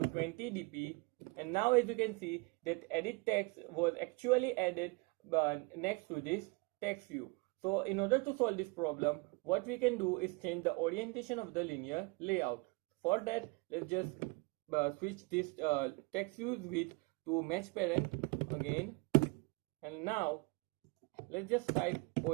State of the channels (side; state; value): left; quieter; 28.7 dB